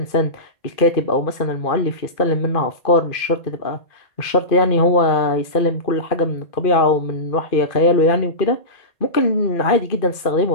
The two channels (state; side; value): late; right; 2.4 ms